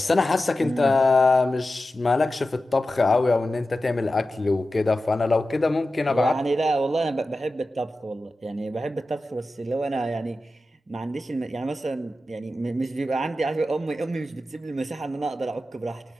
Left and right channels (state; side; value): normal; both; correlation 0.93